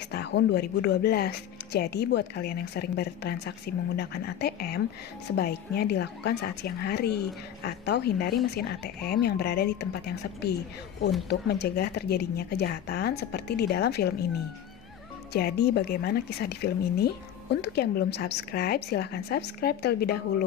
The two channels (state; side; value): quieter; right; 10.1 dB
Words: tahun 2012. Jadi buat kalian yang sering bertransaksi menggunakan ATM, sebaiknya dilakukan saat siang hari atau hindari mesin ATM yang berada di tempat yang sepi untuk mencegah terjadinya kejahatan seperti di dalam film ini. Jadi bagaimana kisah di film ini? Untuk yang belum subscribe, silahkan subscribe terlebih